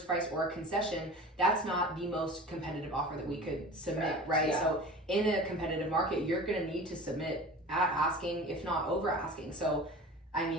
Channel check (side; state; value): both; normal; correlation 0.37